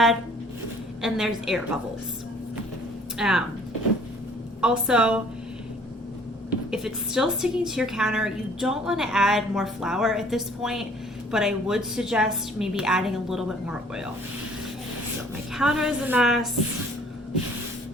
and there's air bubbles. Also, if it's still sticking to your counter, you don't want to add more flour at this point, but I would suggest maybe adding a little bit more oil. So my counter is a mess.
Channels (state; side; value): normal; both; correlation 0.56